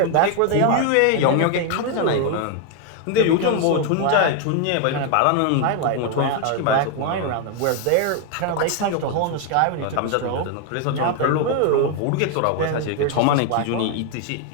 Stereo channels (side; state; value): both; different; correlation 0.01